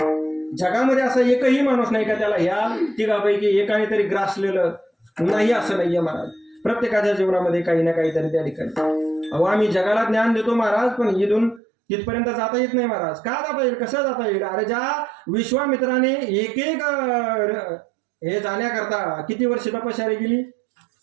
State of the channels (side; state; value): left; drops out; at 11.6 s